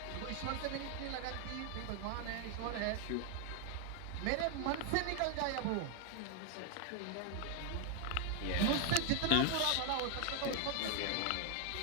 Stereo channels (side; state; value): both; different; correlation 0.00